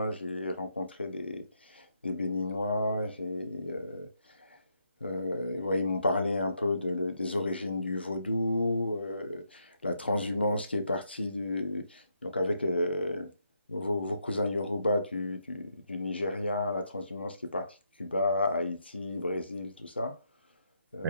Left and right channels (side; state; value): both; inverted; correlation -0.78